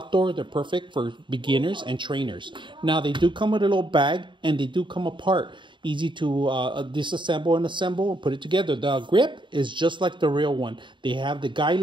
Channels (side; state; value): left; late; 0.23 ms